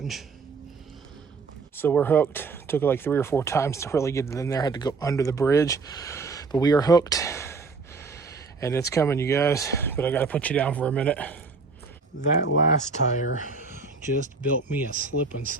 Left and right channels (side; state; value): left; quieter; 4.4 dB